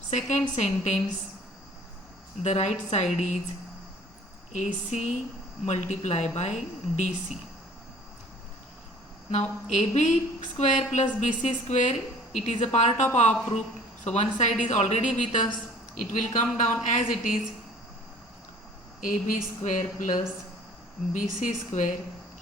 second sentence, the right side is AC multiplied by DC. Now AB square plus BC square, it is a part of our proof. So one side is already with us. It will come down as it is. AB square plus BC square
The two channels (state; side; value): normal; both; correlation 0.51